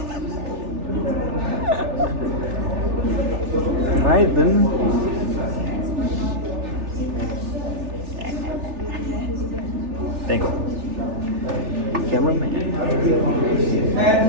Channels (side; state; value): left; late; 3.4 ms